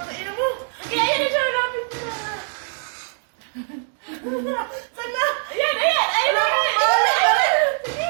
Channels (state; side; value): silent; left; 64 dB below the other